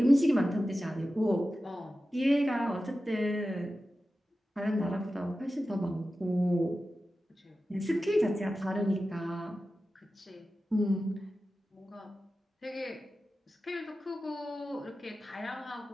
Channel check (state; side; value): normal; both; correlation 0.94